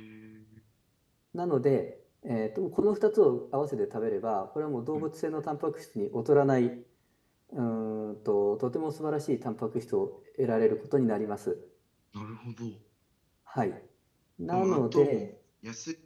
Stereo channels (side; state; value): both; identical; correlation 1.00